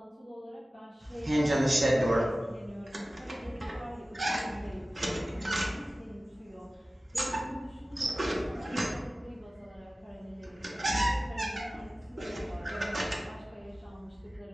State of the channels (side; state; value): both; normal; correlation 0.97